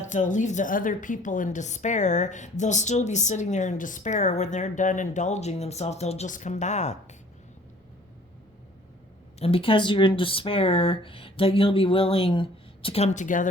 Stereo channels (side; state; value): both; normal; correlation 0.53